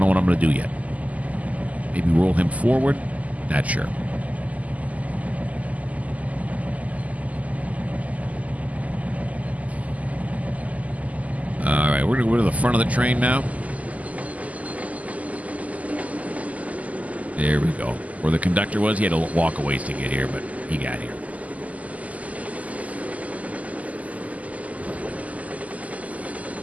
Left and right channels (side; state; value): left; late; 0.074 ms